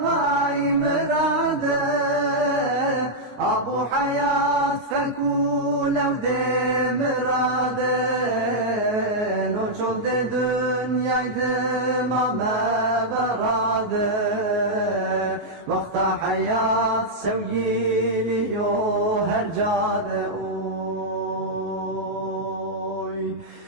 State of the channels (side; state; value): left; late; 19 ms